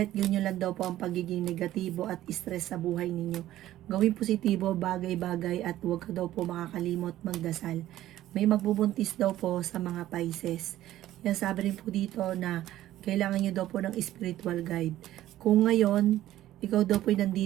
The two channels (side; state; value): left; quieter; 13.9 dB